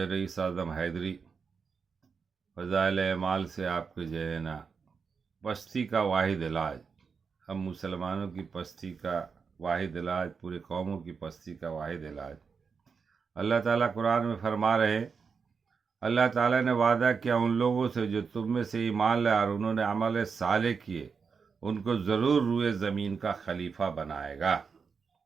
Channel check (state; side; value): quieter; left; 5.6 dB